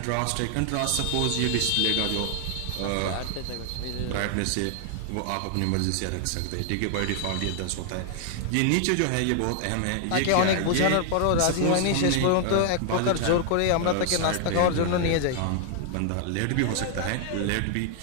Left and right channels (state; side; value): different; both; correlation 0.00